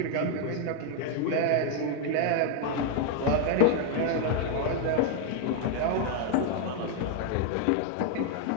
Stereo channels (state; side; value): different; both; correlation 0.00